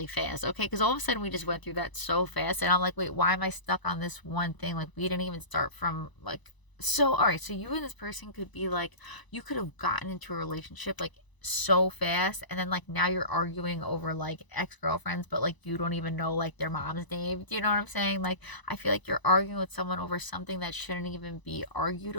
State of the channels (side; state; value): right; late; 1.0 ms